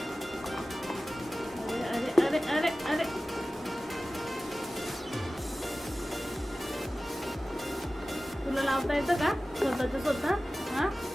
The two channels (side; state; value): both; normal; correlation 0.96